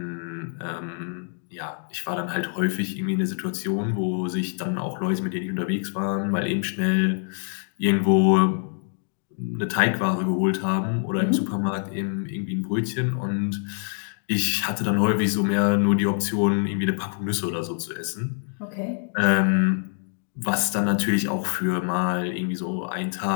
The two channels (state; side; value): silent; right; 62 dB below the other